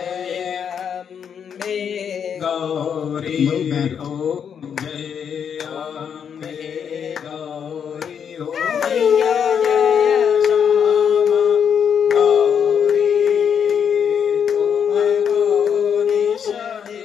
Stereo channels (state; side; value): quieter; right; 7.7 dB